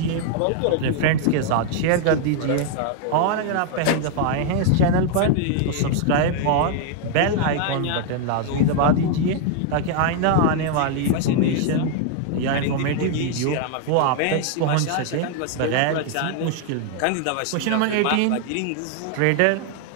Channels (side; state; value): both; different; correlation 0.00